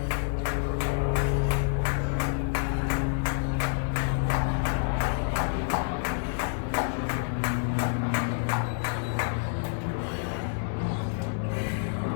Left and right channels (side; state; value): right; silent; 59 dB below the other